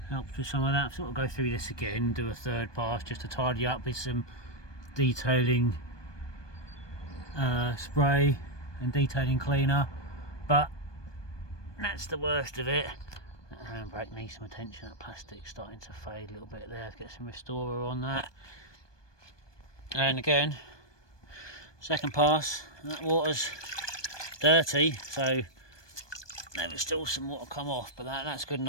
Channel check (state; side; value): late; right; 1.2 ms